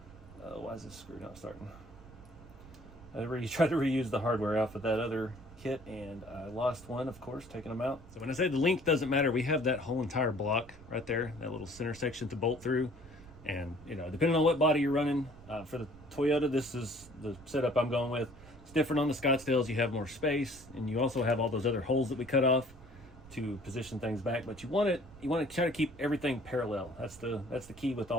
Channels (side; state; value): right; noise; rumble, 20 dB below the sound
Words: Why is this screw not starting? I tried to reuse the hardware off of that other kit, and I lost one, of course, taking them out. So when I say the length doesn't matter, we have that whole entire block right there, that little center section to bolt through. And, you know, depending on what body you're running, for the Toyota, this is the setup I'm going with. It's different on the Scottsdales. You have more space, and you also have all those other holes that we cut off to position things back. But you want to try to keep everything parallel. That's the key with